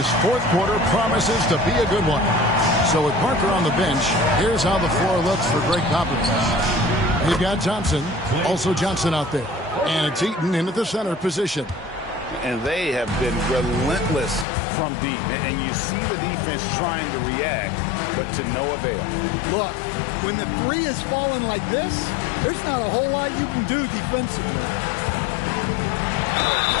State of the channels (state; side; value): drops out; right; at 14.5 s